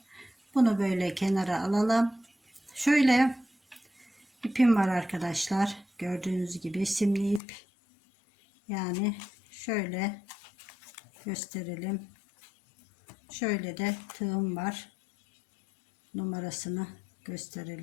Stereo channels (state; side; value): drops out; right; at 7.4 s